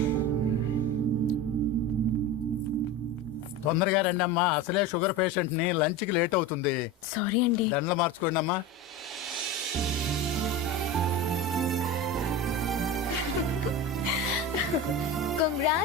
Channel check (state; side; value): normal; both; correlation 0.26